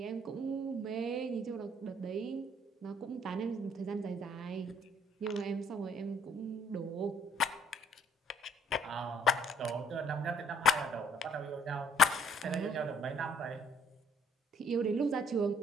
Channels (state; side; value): normal; both; correlation 0.61